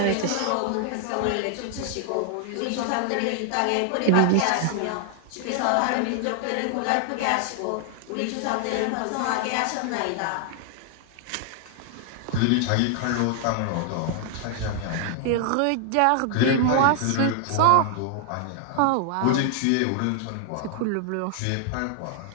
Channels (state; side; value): different; both; correlation 0.00